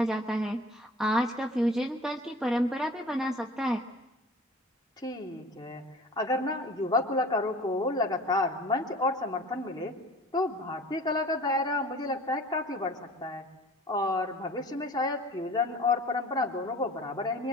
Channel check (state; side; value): normal; both; correlation 0.43